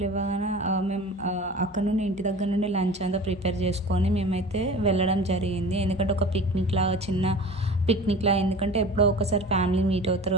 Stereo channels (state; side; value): normal; both; correlation 0.38